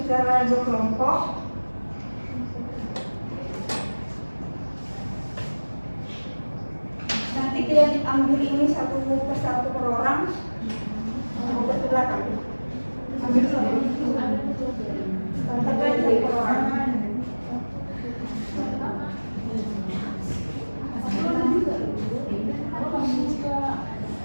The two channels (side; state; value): both; inverted; correlation -1.00